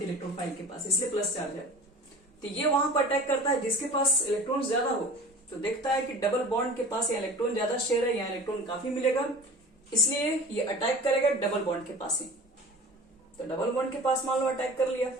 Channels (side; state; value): both; normal; correlation 0.40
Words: है इलेक्ट्रोफाइल के पास, इसलिए प्लस चार्ज है। तो ये वहां पर अटैक करता है जिसके पास इलेक्ट्रॉन ज्यादा हो। तो देखता है कि डबल बॉन्ड के पास या इलेक्ट्रॉन ज्यादा शेयर है, यहाँ इलेक्ट्रॉन काफी मिलेगा, इसलिए ये अटैक करेगा डबल बॉन्ड के पास ही। तो डबल बॉन्ड के पास मान लो अटैक कर लिया,